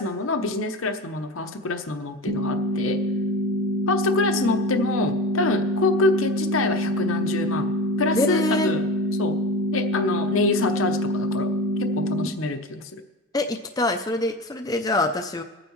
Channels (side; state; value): both; normal; correlation 0.28